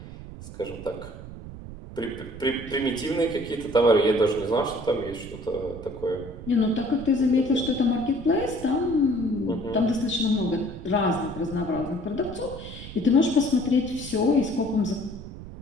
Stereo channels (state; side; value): noise; right; rumble, 13 dB below the sound